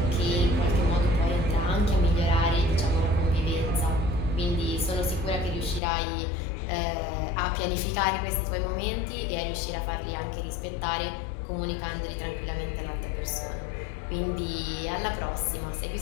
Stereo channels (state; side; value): drops out; right; at 5.8 s